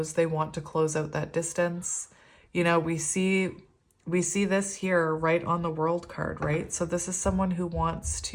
they want to close out that distance. We see this here right on the World card, right? So this is someone who wants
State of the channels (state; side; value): identical; both; correlation 1.00